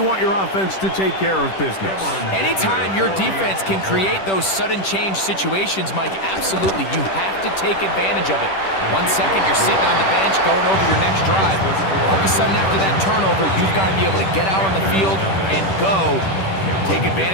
want your offense to take care of business. Anytime your defense can create those sudden change situations, Mike, absolutely, you have to take advantage of it. 1 second, you're sitting on the bench going over your next drive. All of a sudden, after that turnover, you've got to be able to get out on the field and go. Take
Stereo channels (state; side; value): late; right; 10 ms